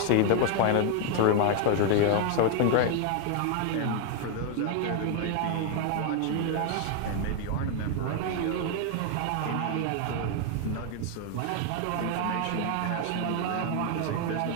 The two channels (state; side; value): different; both; correlation 0.00